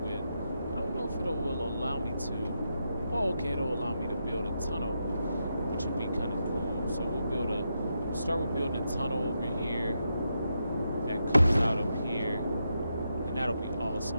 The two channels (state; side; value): inverted; both; correlation -0.84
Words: I don't know if it will allow me to. Oh, okay, it'll allow me to build a tunnel, which would be kind of cool. So we'll start with building a tunnel over here that comes out up here, and that'll be